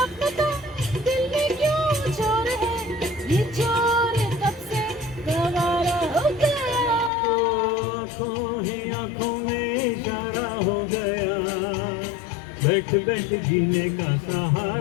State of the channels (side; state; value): right; drops out; at 7.1 s